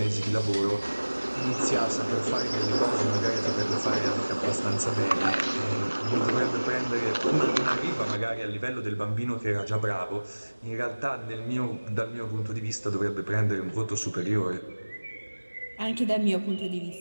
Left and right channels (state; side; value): inverted; both; correlation -1.00